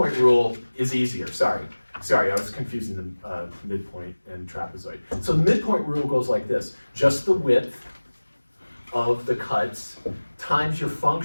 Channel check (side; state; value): both; inverted; correlation -1.00